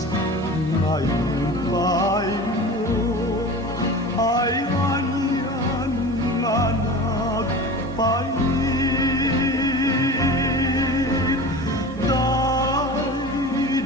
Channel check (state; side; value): normal; both; correlation 0.34